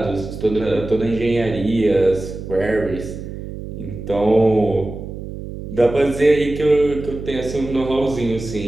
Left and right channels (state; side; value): noise; right; hum, 10 dB below the sound